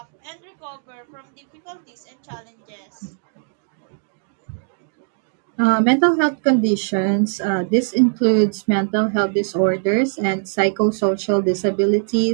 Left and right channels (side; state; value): left; silent; digital silence